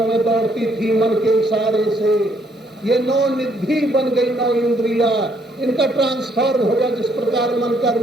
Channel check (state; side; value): normal; both; correlation 0.69